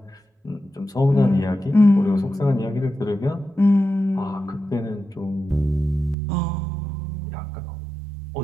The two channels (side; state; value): left; drops out; at 6.2 s